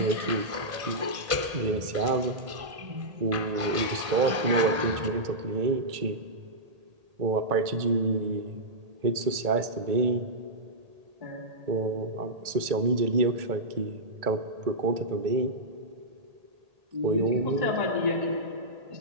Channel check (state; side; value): late; left; 1.8 ms